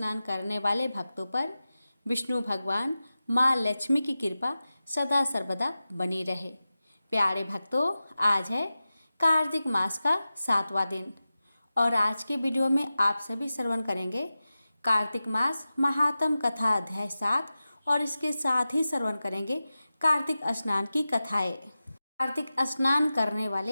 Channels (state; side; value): inverted; both; correlation -0.95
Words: करने वाले भक्तों पर विष्णु भगवान माँ लक्ष्मी की कृपा सदा सर्वदा बनी रहे। प्यारे भक्तों, आज है कार्तिक मास का 7वां दिन और आज के वीडियो में आप सभी श्रवण करेंगे कार्तिक मास महात्म कथा अध्याय 7 और इसके साथ ही श्रवण करेंगे कार्तिक स्नान की कथाएं। कार्तिक स्नान करने